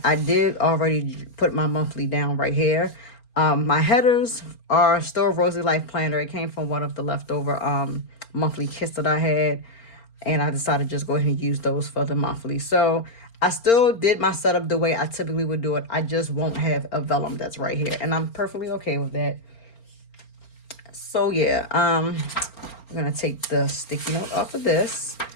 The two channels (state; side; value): late; right; 4.4 ms